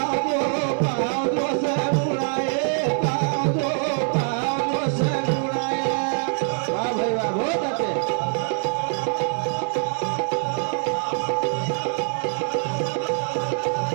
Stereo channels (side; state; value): left; silent; 60 dB below the other